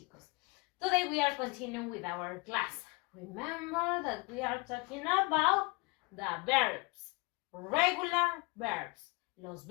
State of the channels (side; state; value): right; quieter; 27.4 dB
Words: Today we are continuing with our class. Remember that we are talking about the verbs, regular verbs, los